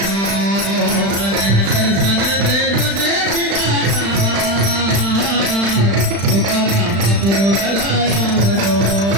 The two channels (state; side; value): late; left; 35 ms